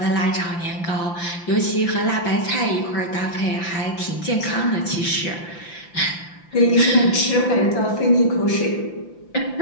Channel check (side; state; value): right; late; 5.8 ms